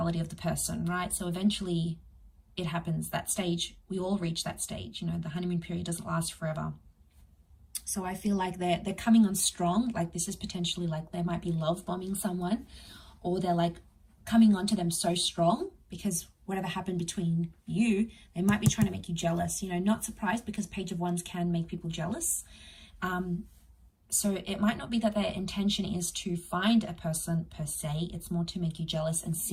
of the person, right? So eventually it happens, that stage, we all reach that stage, you know, the honeymoon period doesn't last forever. So I feel like they're coming on strong, like this is potentially like they might be love bombing someone, or they're like coming onto them so strong because whatever happened between you, they might be trying to make you jealous, you know, not surprised because Page of Wands can make people jealous. So it might not be that their intention is to find a person per se, it's more to make you jealous and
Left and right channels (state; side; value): identical; both; correlation 1.00